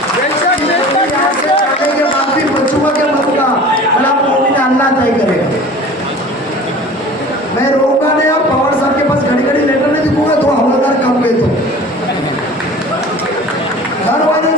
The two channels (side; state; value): both; normal; correlation 0.42